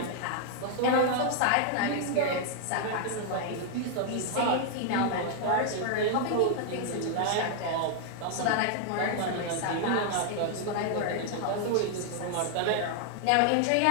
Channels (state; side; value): different; both; correlation 0.00